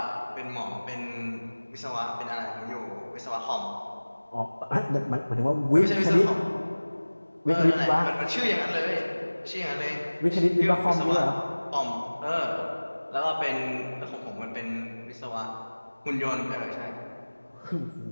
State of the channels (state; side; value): inverted; both; correlation -1.00